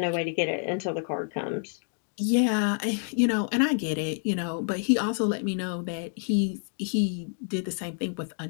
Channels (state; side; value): silent; right; 59 dB below the other